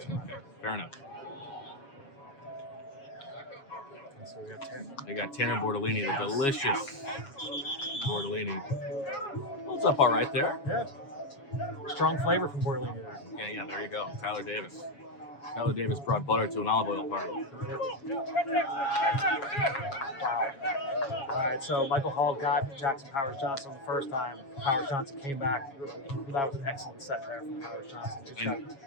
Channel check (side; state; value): right; late; 7.3 ms